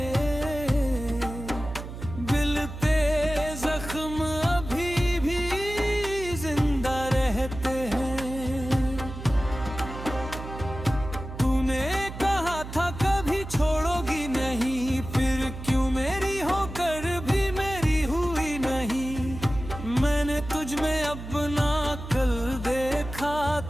दिल पे जख्म अभी भी जिंदा रहते हैं। तूने कहा था कभी छोड़ोगी नहीं, फिर क्यों मेरी होकर भी मेरी हुई नहीं। मैंने तुझ में अपना कल देखा,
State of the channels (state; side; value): noise; right; hum, 10 dB below the sound